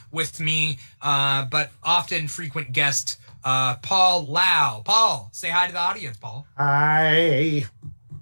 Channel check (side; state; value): both; inverted; correlation -1.00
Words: with me, but often frequent guest, Paul Lau. Paul, say hi to the audience, Paul. Hi.